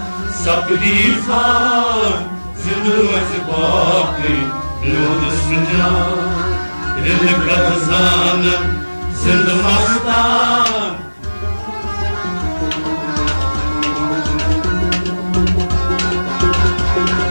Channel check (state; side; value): inverted; both; correlation -1.00